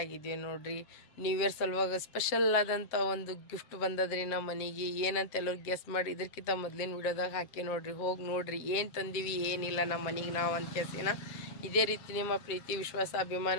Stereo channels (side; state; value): right; late; 7.5 ms